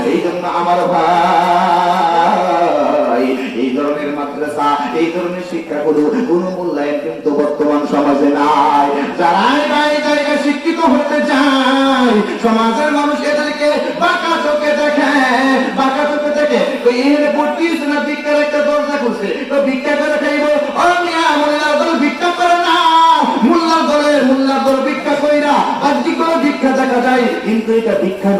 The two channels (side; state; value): both; identical; correlation 1.00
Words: এই জন্য আমার ভাই এই ধরনের মাদ্রাসা, এই ধরনের শিক্ষাগুলো কোনো মূল্যায়ন কিন্তু বর্তমান সমাজে নাই। যারাই জায়গায় শিক্ষিত হতে যায়, সমাজের মানুষ এদেরকে বাঁকা চোখে দেখে, বাঁকা চোখে দেখে। এখানে পড়তিস না, ভিক্ষার একটা দরজা খুলছে, তো ভিক্ষা করে খাইব। মোল্লার দল ভিক্ষা করে না, মোল্লার দল ভিক্ষা কইরা বাহ্যিক ভিক্ষা দেখা যায়, কিন্তু এটা ভিক্ষা